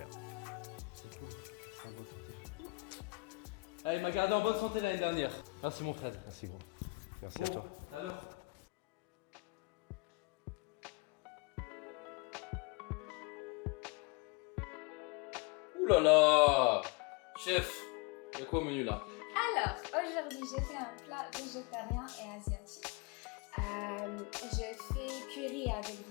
C'est cool, c'est en bonne santé frère. Ah, il m'a gardé en bonne santé l'année dernière. Merci mon Fred. Merci gros. Merci Bon, à toi. tout à l'heure. Ouh là là! Chef, il y a quoi au menu là? Alors, aujourd'hui, j'ai fait un plat végétarien et asiatique. Je fais curry avec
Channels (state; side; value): quieter; right; 26.4 dB